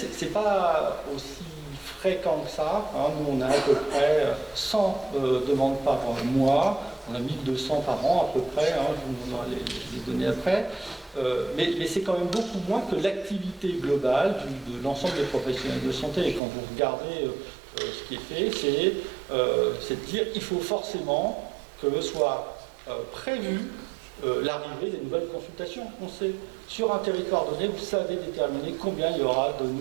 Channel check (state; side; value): drops out; left; at 16.4 s